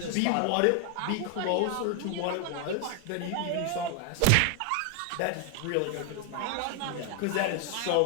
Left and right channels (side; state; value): both; different; correlation 0.01